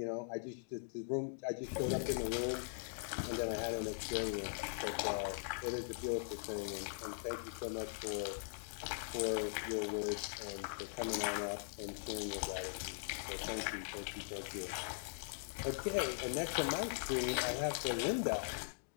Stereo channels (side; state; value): right; silent; digital silence